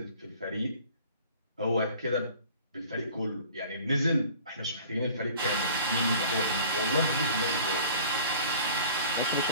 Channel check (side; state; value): both; inverted; correlation -0.47